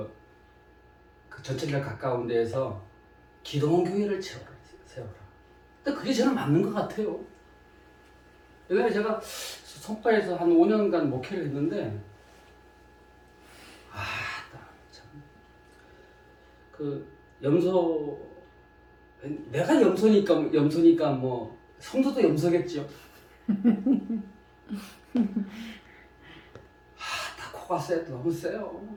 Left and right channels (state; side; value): identical; both; correlation 1.00